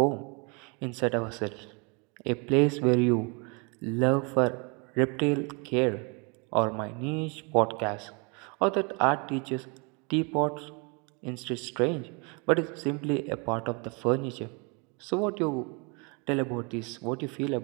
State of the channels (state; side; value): quieter; left; 32.3 dB